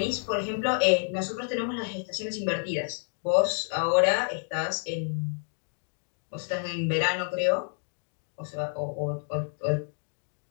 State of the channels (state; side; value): silent; right; 58 dB below the other